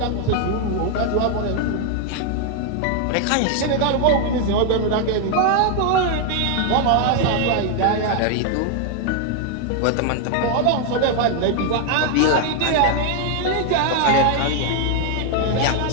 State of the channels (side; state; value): both; different; correlation 0.00